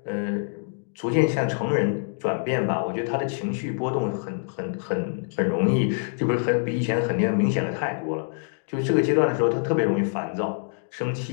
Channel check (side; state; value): right; silent; digital silence